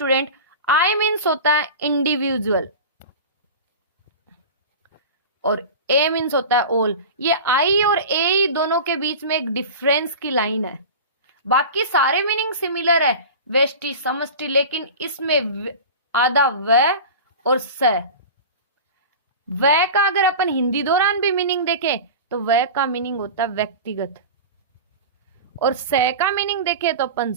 I मीन्स होता है इंडिविजुअल और A मीन्स होता है ऑल। ये I और A दोनों के बीच में एक डिफरेंस की लाइन है, बाकी सारे मीनिंग सिमिलर है व्यष्टि समष्टि, लेकिन इसमें आधा व और स। व का अगर अपन हिंदी दौरान भी मीनिंग देखें तो व का मीनिंग होता है व्यक्तिगत, और स का मीनिंग देखें तो अपन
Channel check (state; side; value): inverted; both; correlation -0.31